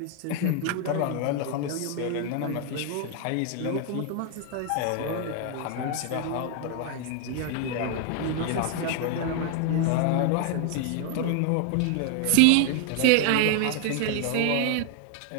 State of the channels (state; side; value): different; both; correlation 0.01